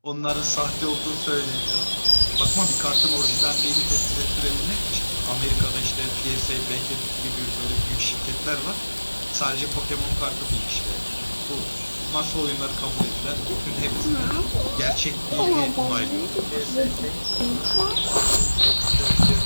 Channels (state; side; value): inverted; both; correlation -1.00